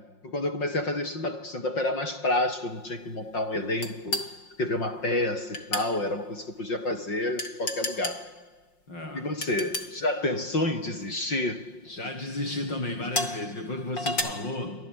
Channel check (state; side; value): late; right; 5.6 ms